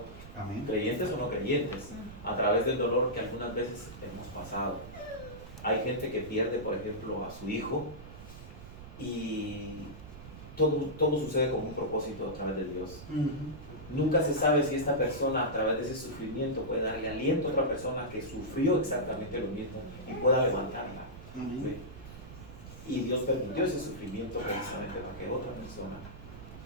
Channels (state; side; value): noise; right; rumble, 14 dB below the sound